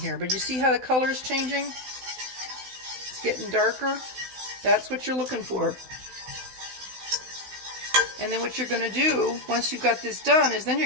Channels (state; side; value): late; left; 16 ms